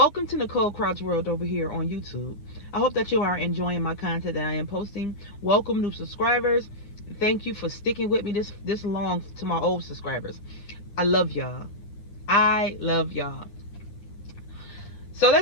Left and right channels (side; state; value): right; late; 9.8 ms